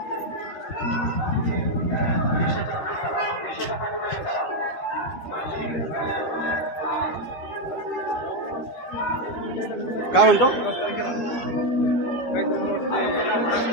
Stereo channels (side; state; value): right; late; 13 ms